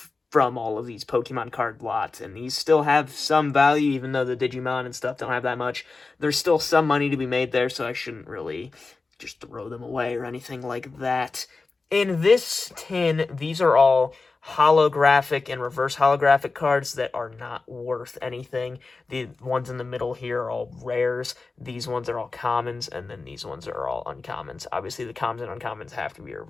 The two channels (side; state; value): right; quieter; 3.9 dB